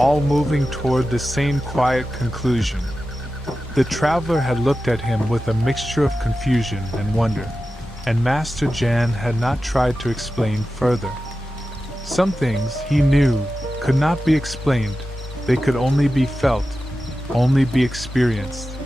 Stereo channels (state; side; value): normal; both; correlation 0.93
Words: moving toward the same quiet conclusion." The traveler had looked at him with a mixture of confusion and wonder, and Master Jan had not tried to explain further. Some things, he knew, could not be explained, they could only be felt, only be experienced,